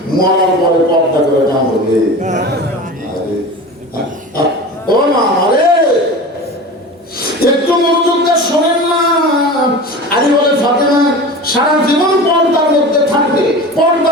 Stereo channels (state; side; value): normal; both; correlation 0.33